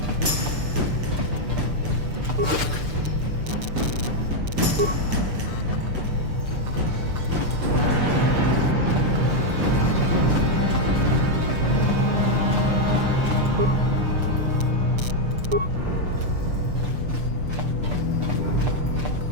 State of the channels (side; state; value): left; late; 6.7 ms